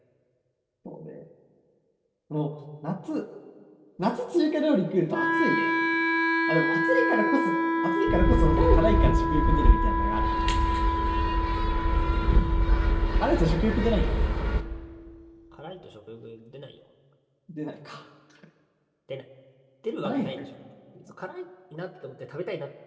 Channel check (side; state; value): both; identical; correlation 1.00